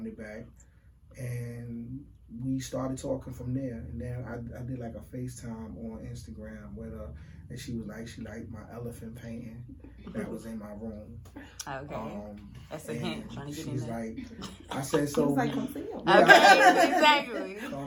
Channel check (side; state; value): both; identical; correlation 1.00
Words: back, and we started talking from there. And then I did like a FaceTime on Instagram with her, and she was like, she liked my elephant painting that was in my room. Okay. That's a hint. Trying to get in She's there. like, I said, so. He's like, come see him. Okay, exactly. Come